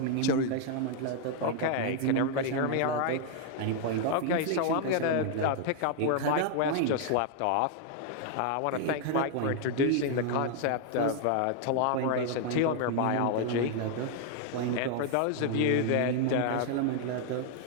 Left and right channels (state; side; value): different; both; correlation 0.00